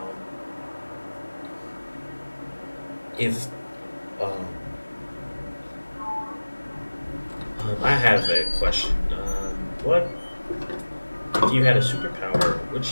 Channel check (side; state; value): both; inverted; correlation -1.00